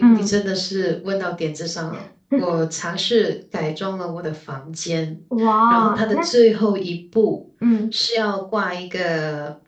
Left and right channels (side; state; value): both; identical; correlation 1.00